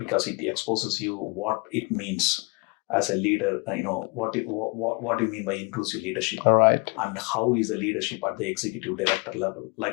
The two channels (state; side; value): quieter; right; 30.0 dB